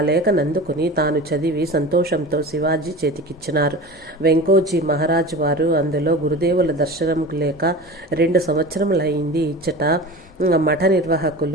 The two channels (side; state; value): both; normal; correlation 0.33